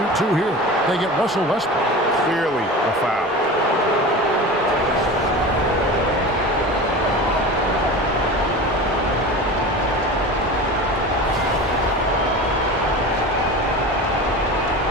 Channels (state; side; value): normal; both; correlation 0.32